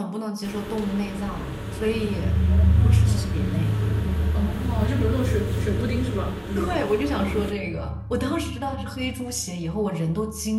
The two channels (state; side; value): identical; both; correlation 1.00